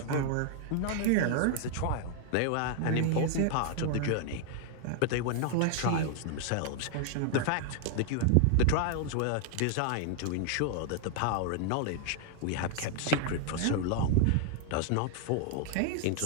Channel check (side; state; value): both; different; correlation 0.00